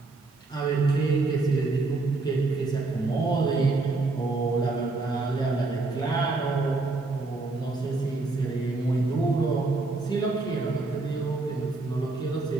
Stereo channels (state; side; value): quieter; left; 3.5 dB